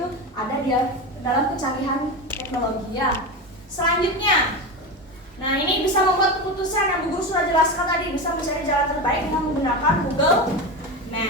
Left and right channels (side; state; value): both; normal; correlation 0.21